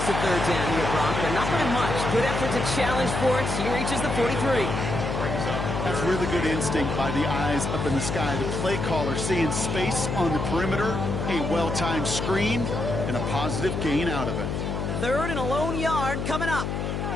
a 3rd down here, Brock, but not by much. Good effort to challenge for it. He reaches the 43. That's really good instinct by the eyes up in the sky. The play caller seeing space on the perimeter, a well-timed screen, and a positive gain out of it. 3rd and a lone yard coming up.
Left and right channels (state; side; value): noise; left; hum, 2 dB below the sound